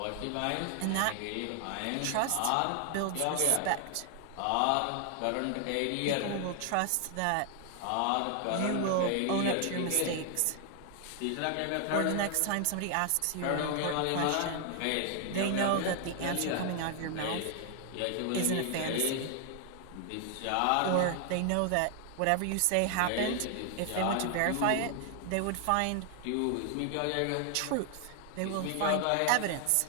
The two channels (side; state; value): both; different; correlation 0.00